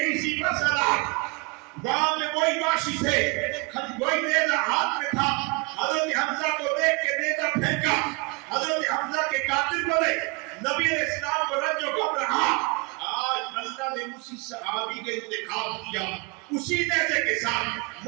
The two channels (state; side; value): quieter; left; 29.3 dB